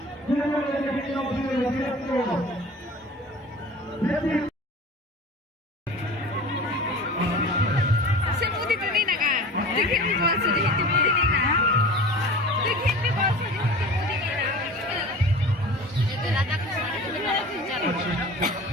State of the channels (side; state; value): both; normal; correlation 0.38